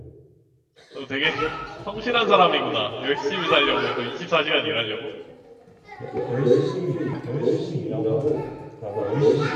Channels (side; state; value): both; identical; correlation 1.00